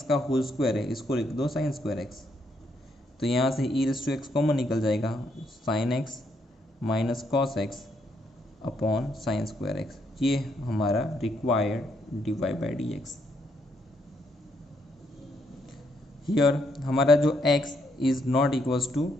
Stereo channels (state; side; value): normal; both; correlation 0.75